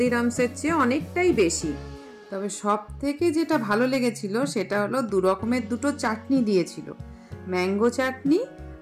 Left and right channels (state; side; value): identical; both; correlation 1.00